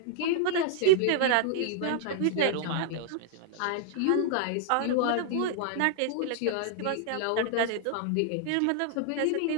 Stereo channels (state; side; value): different; both; correlation -0.01